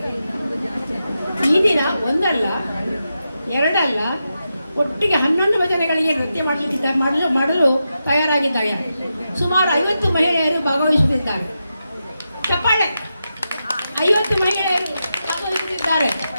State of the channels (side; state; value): both; inverted; correlation -0.88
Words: ಈ ದಿನ ಒಂದಲ್ಲ ಎರಡಲ್ಲ ಒಟ್ಟಿಗೆ 11 ಭಜನೆಗಳಿಗೆ ನೃತ್ಯ ಮಾಡಲು ತಯಾರಾಗಿದ್ದಾರೆ. ಸುಮಾರು 50 ಮಹಿಳೆಯರು ಭಾಗವಹಿಸುತ್ತಿದ್ದಾರೆ. ಚಪ್ಪಾಳೆ! 50 ಮಹಿಳೆಯರು ಭಾಗವಹಿಸುತ್ತಿದ್ದಾರೆ.